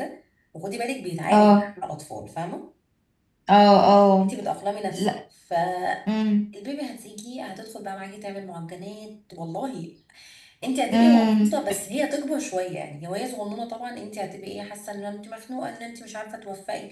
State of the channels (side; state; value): both; identical; correlation 1.00